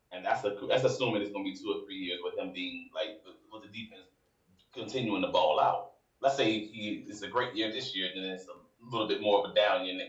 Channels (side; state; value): both; identical; correlation 1.00